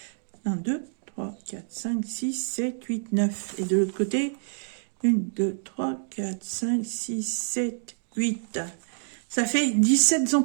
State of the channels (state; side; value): silent; left; digital silence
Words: 1, 2, 3, 4, 5, 6, 7, 8, 9. Et de l'autre côté, 1, 2, 3, 4, 5, 6, 7, 8. Ça fait 17